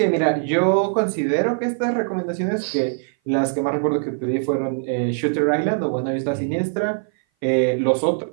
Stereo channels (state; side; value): silent; left; 58 dB below the other